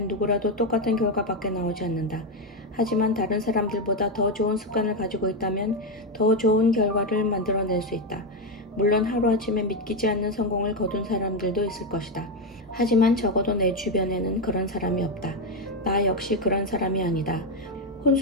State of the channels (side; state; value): both; normal; correlation 0.07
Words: 누구라도 똑같은 결과밖에 나오지 않는다. 하지만 다른 사람들보다 더 좋은 습관을 가지고 있다면 더 좋은 결과를 만들어낼 수 있다. 물론 하루아침에 믿기지 않는 성공을 거둔 사람들도 있을 것이다. 하지만 적어도 내 주변에는 그런 사람이 없다. 나 역시 그런 사람이 아니다.